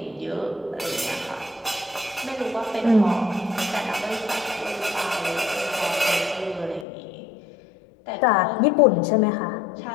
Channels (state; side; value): drops out; right; at 6.9 s